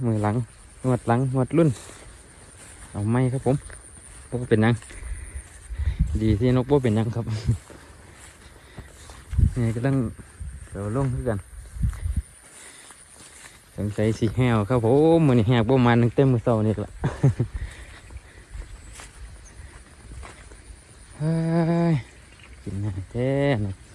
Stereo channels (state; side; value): identical; both; correlation 1.00